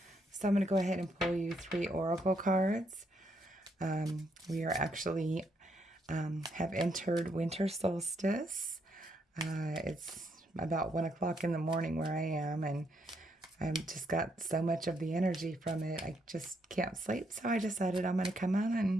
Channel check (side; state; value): both; normal; correlation 0.75